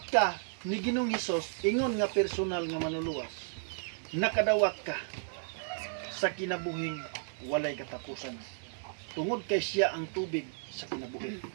ka ni Ginoong Hesus ingon nga personal nga manluluwas, nakadawat ka sa kinabuhing walay katapusan tungod kay siya ang tubig sa kinabuhi.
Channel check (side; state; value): left; silent; digital silence